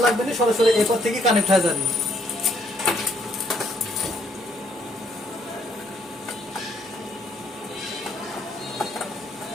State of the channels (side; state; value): both; normal; correlation 0.69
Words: লাগবে না, সরাসরি এরপর থেকে কানেক্ট হয়ে যাবে।